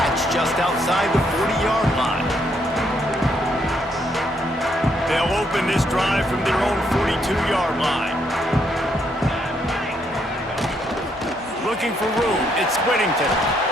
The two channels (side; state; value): both; normal; correlation 0.73